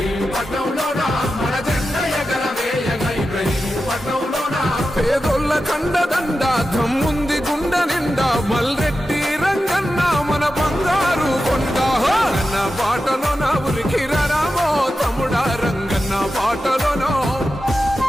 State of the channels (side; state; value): both; normal; correlation 0.92